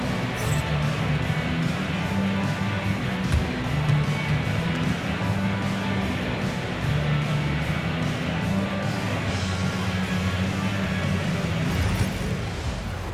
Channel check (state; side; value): identical; both; correlation 1.00